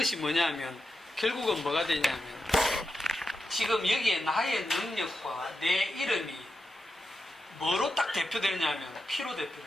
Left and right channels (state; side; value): normal; both; correlation 0.88